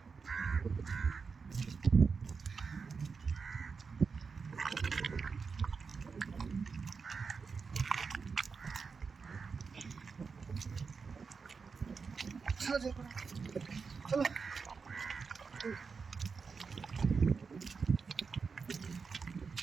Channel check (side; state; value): left; quieter; 5.2 dB